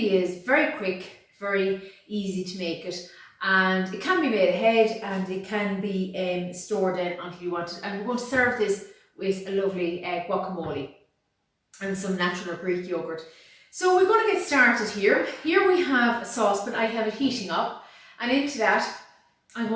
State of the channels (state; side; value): identical; both; correlation 1.00